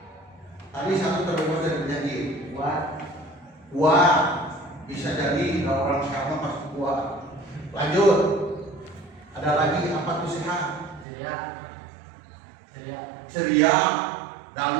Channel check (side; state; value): left; drops out; at 11.1 s